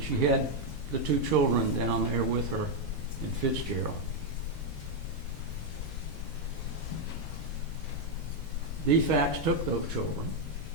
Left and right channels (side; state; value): both; normal; correlation 0.01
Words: she had the 2 children down there with her in Fitzgerald. DFACS took those children,